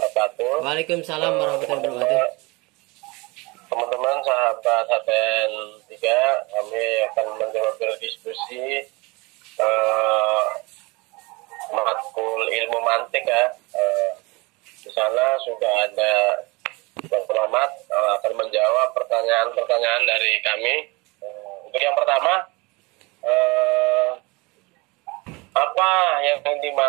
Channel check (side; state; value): left; quieter; 25.6 dB